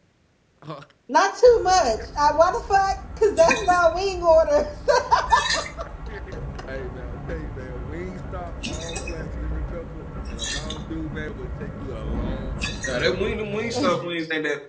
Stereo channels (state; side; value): identical; both; correlation 1.00